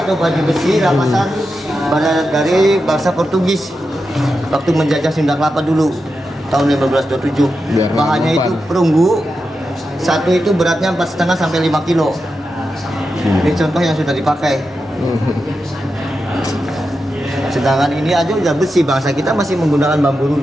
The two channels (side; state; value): both; normal; correlation 0.89